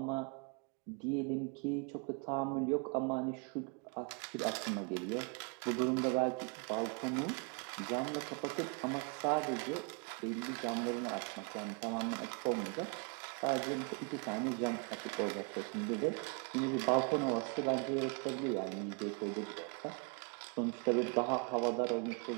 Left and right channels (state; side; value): quieter; left; 35.1 dB